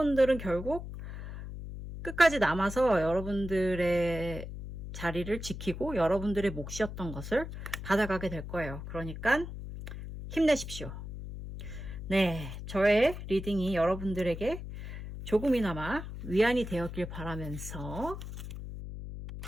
결국 끝까지 남아서 여러분들의 자리를 지키고 여러분들의 몫이었던 것을 받아가게 될 거예요. 그러니까 힘내십시오. 네, 저의 리딩이 여러분들에게 조금이나마 위안이 되었길 바라면서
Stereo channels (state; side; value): noise; left; hum, 9 dB below the sound